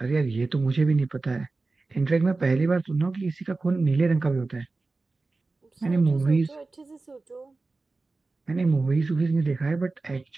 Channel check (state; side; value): quieter; left; 3.6 dB